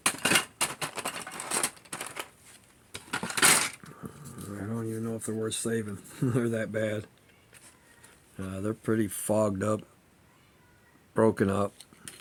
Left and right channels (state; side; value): identical; both; correlation 1.00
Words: I don't even know if they're worth saving. They're that bad. They're pretty fogged up, broken up.